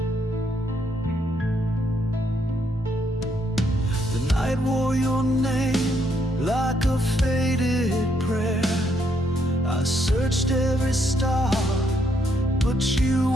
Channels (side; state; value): both; normal; correlation 0.74